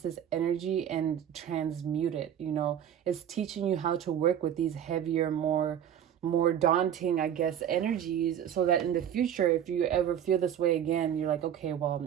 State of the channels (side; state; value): left; quieter; 9.6 dB